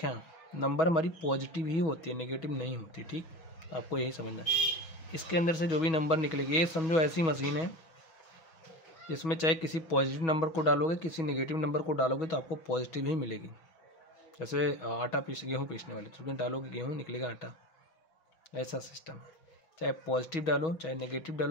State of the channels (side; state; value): right; late; 6.3 ms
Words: नंबर हमारी पॉजिटिव ही होती है, नेगेटिव नहीं होती। ठीक, आपको यही समझना है। इसके अंदर से जो भी नंबर निकलेगी, ये समझो ऐसी मशीन है इसमें चाहे किसी पॉजिटिव नंबर को डालोगे, किसी नेगेटिव नंबर को डालोगे तो आपको पॉजिटिव ही मिलेगी। जैसे गेहूँ पीसने वाले, तो डालोगे गेहूँ निकलेगा आटा, ऐसा सिस्टम है। चाहे पॉजिटिव डालो चाहे नेगेटिव